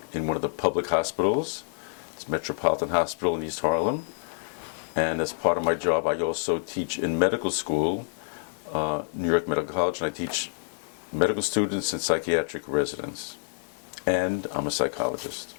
in one of the public hospitals. It's Metropolitan Hospital in East Harlem. And as part of my job, I also teach in medical school, New York Medical College, and I teach medical students and psychiatric residents. And I'm a psychologist.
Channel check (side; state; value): right; silent; digital silence